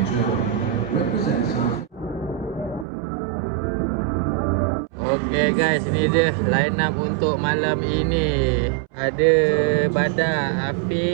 Okay guys, ini dia line up untuk malam ini. Ada Badar,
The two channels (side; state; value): left; drops out; at 2.9 s